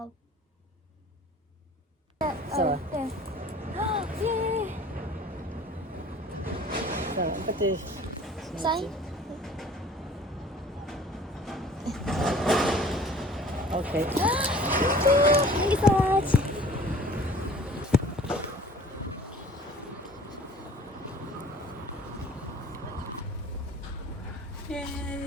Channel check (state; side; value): normal; both; correlation 0.48